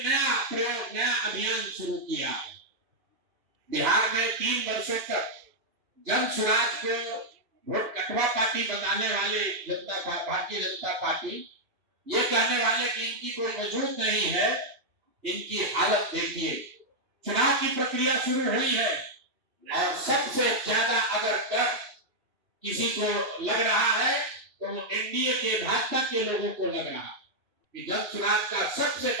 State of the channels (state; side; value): late; left; 3.0 ms